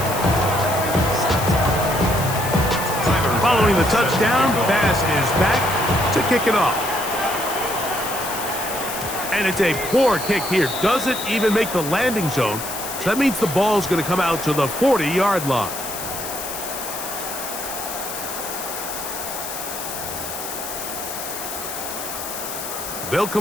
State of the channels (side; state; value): left; noise; hiss, 7 dB below the sound